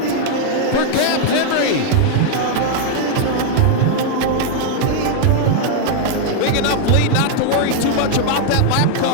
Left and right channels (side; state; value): both; different; correlation 0.00